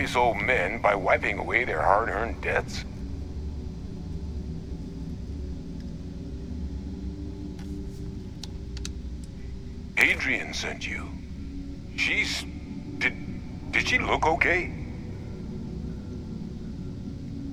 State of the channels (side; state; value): both; identical; correlation 1.00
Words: old men by wiping away their hard-earned debts? Adrian sent you. She's... Did she look okay?